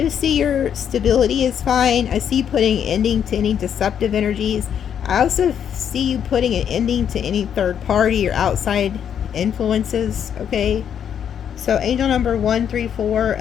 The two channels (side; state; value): right; quieter; 8.6 dB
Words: see your stability is fine. I see you putting ending to any deceptive energies. I also see you putting an ending to any third party or outside influences, okay? So angel number 134